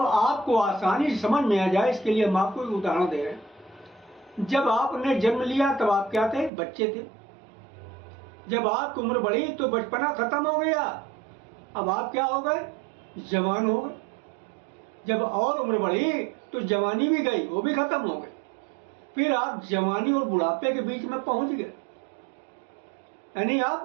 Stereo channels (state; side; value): drops out; left; at 6.5 s